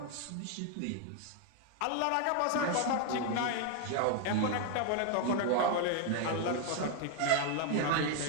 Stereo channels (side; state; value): both; different; correlation 0.00